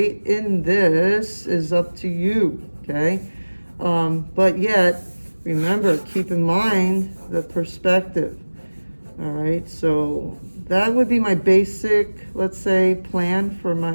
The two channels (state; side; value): inverted; both; correlation -1.00